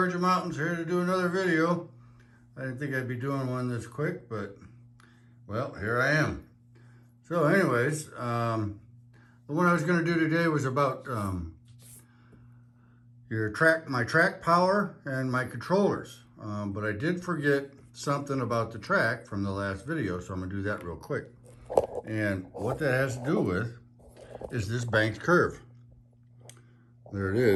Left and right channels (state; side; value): identical; both; correlation 1.00